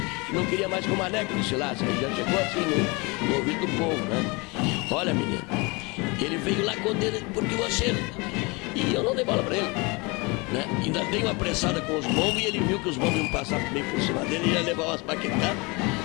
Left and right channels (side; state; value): right; quieter; 27.3 dB